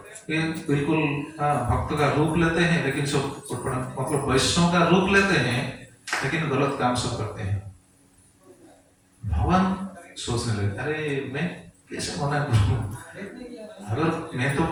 ये बिल्कुल भक्त का रूप लेते हैं, लेकिन सब मतलब वैष्णव का रूप लेते हैं, लेकिन गलत काम सब करते हैं। भगवान सोचने लगे, अरे मैं कैसे मना करूं? अगर मैं तो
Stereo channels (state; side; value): identical; both; correlation 1.00